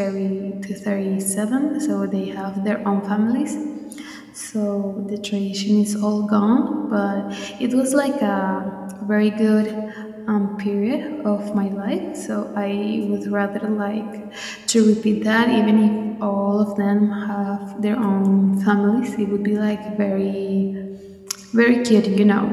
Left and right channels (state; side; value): identical; both; correlation 1.00